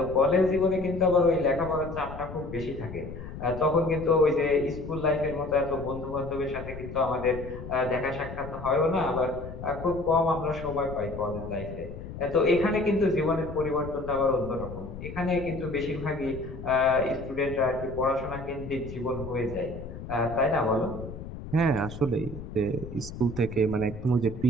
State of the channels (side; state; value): left; noise; rumble, 11 dB below the sound